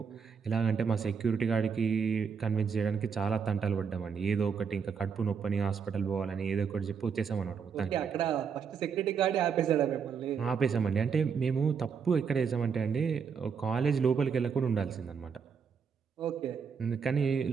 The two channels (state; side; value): quieter; left; 6.3 dB